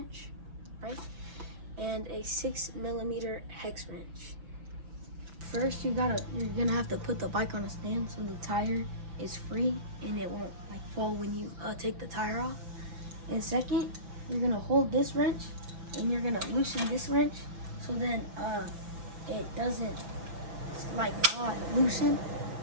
right? And a 6mm hex wrench. First, you're gonna have to put the bike on a stand so the tire is free and it won't like fall when you take the tire off. And second, you're gonna hold this wrench and you're gonna loosen this wrench so then it doesn't like not loosen,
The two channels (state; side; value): late; left; 5.7 ms